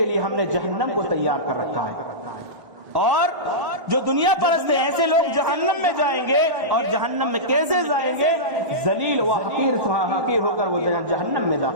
لیے ہم نے جہنم کو تیار کر رکھا ہے، اور جو دنیا پرست ہیں ایسے لوگ جہنم میں جائیں گے، اور جہنم میں کیسے جائیں گے؟ ذلیل و حقیر ہو کر وہ جہنم میں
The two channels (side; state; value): left; late; 1.6 ms